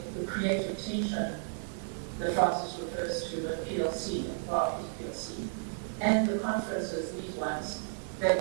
the creative tension that Francis refers to at PLC, Barclays PLC, and the conferences, these ones,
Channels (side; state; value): left; silent; digital silence